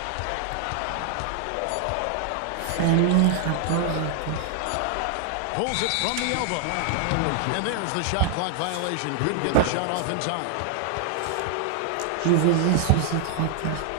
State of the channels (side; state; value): both; different; correlation 0.00